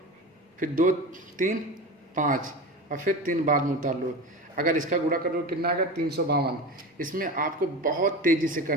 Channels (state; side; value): normal; both; correlation 0.28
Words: फिर 2 3 5 और फिर 3 बाद में उतार लो। अगर इसका गुणा करो कितना आएगा 352। इसमें आपको बहुत तेज़ी से